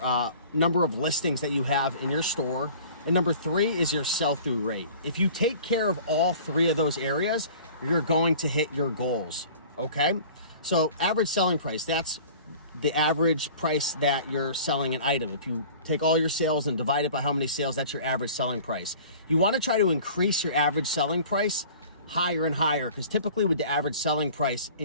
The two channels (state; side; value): inverted; both; correlation -0.45